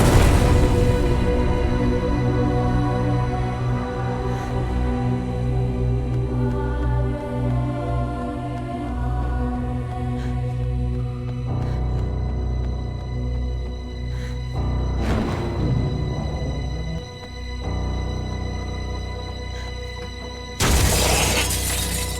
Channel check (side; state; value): both; identical; correlation 1.00